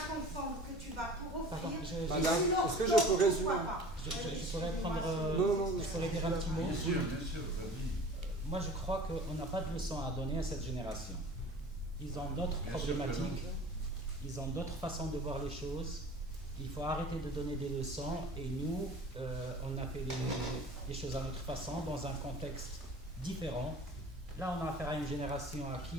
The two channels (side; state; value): both; normal; correlation 0.42